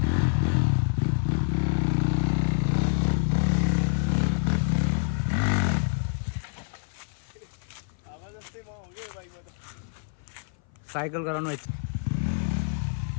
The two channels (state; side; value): silent; right; 57 dB below the other